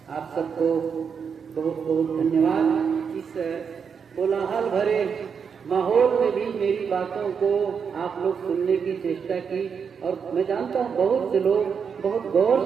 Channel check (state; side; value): quieter; left; 6.5 dB